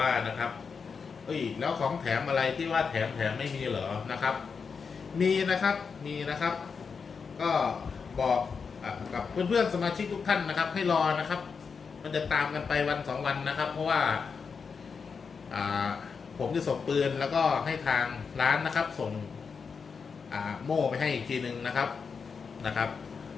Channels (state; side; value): quieter; right; 5.6 dB